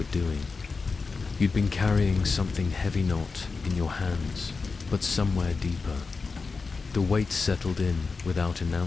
doing. You'd been carrying something heavy not in your hands, but somewhere deeper. The weight settled in without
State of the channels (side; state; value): right; quieter; 4.4 dB